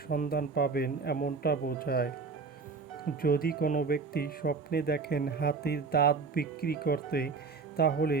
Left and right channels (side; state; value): left; quieter; 4.7 dB